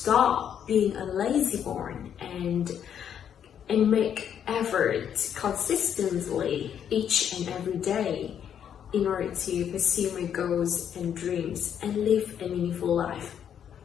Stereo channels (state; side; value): quieter; right; 8.9 dB